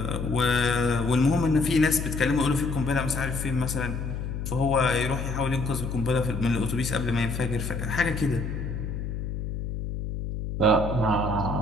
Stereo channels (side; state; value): left; noise; hum, 4 dB below the sound